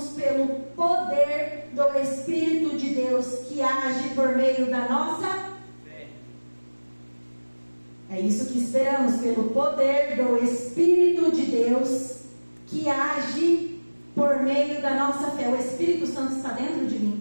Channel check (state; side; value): inverted; both; correlation -1.00